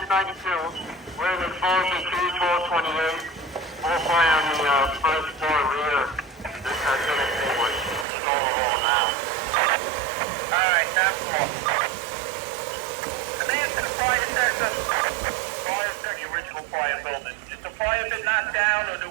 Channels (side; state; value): left; drops out; at 8.1 s